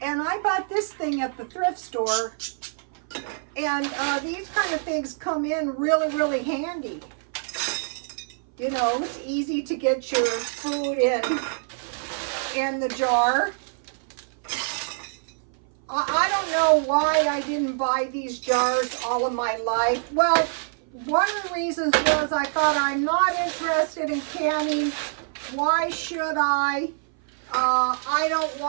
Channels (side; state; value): left; silent; 58 dB below the other